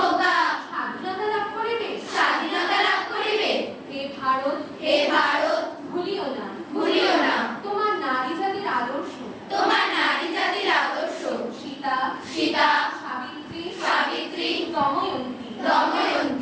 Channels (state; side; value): identical; both; correlation 1.00